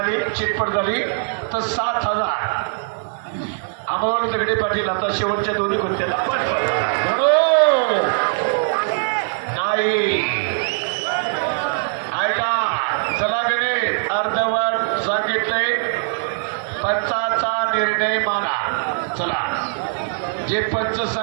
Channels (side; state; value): left; silent; digital silence